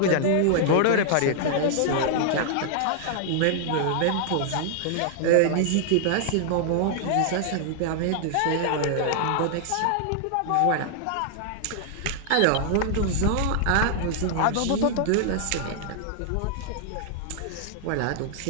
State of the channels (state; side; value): different; both; correlation -0.01